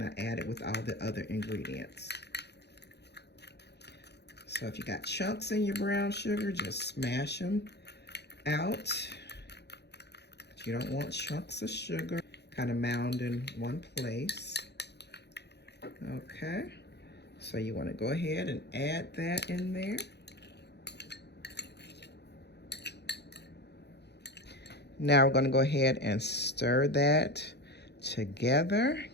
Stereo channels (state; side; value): late; right; 0.49 ms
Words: I add it with all the other ingredients. So if you got chunks in your brown sugar, just smash them out. But you don't want chunks of sugar kind of mound in one place. Okay, so you want to go ahead and add that in there. Now we're going to go ahead and stir that together.